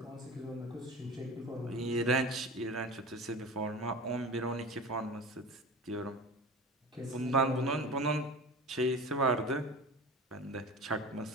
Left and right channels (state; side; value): normal; both; correlation 0.33